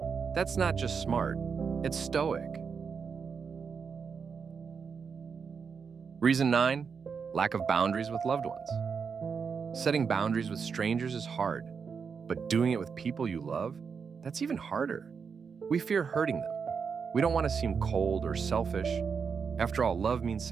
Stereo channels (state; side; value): quieter; left; 6.0 dB